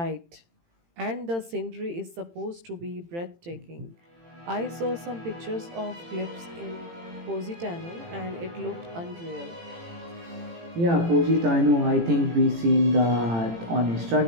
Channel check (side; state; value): left; late; 18 ms